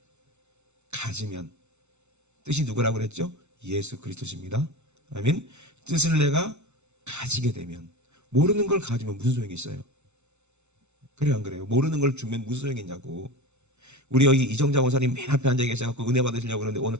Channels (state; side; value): late; left; 0.82 ms